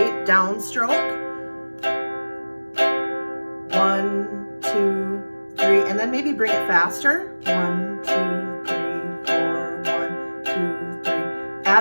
downstroke. 1, 2, 3, and then maybe bring it faster. 1, 2, 3, 4, 1, 2, 3.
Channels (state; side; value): inverted; both; correlation -1.00